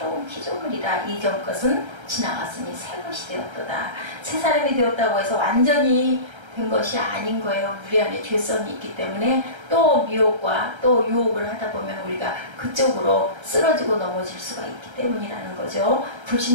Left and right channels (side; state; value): left; late; 1.3 ms